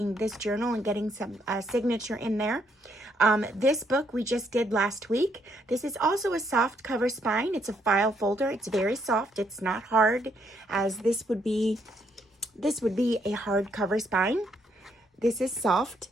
this journal and getting some signature in there. This book we just did last week. This is also a soft cover spine. It's a file folder. It's very soft. It's not hard as this would be a hard cover spine. This is soft.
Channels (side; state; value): both; normal; correlation 0.73